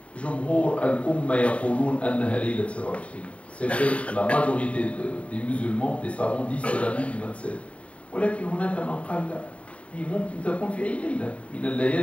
جمهور الأمة يقولون أنها ليلة 27. C'est vrai, la majorité des musulmans, des savants disent que c'est la nuit du 27. ولكن هناك من قال لا. هي ممكن تكون في أي ليلة من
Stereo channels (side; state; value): right; late; 0.064 ms